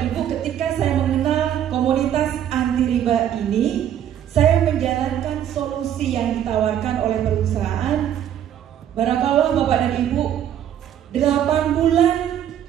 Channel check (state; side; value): quieter; left; 10.3 dB